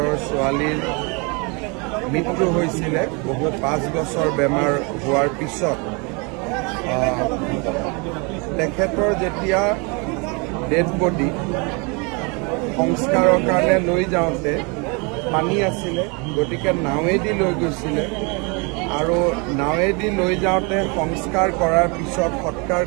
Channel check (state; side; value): quieter; left; 31.2 dB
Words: ছোৱালীৰ মৃত্যু হৈছিলে বহু 5 বছৰ বেমাৰ হোৱাৰ পিছত তেখেতৰ যেতিয়া ডেড বডি সংস্কাৰৰ কাৰণে লৈ যাওঁতে পানী আছিলে গতিকে নাৱেদি লৈ গৈছিলে আৰু নাৱেদি লৈ যাওঁতে সংস্কাৰ কৰাৰ পিছত সৎকাৰ